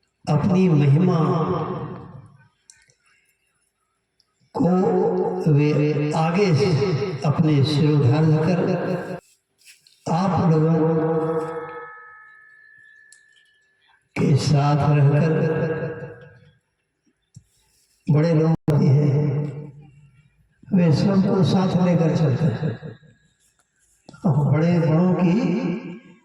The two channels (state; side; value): identical; both; correlation 1.00